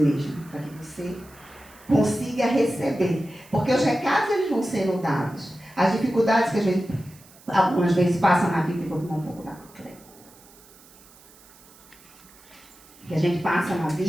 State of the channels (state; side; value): noise; right; hiss, 25 dB below the sound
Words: mesmo, para que você consiga receber. Porque os recados eles vão sendo dados. As dificuldades que a gente algumas vezes passa na vida, e vou tomar um pouco da coisa, que a gente passa na